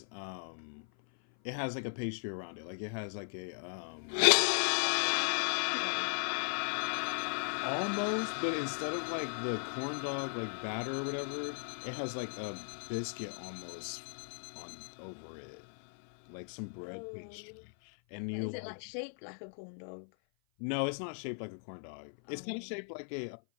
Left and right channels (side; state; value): right; silent; 53 dB below the other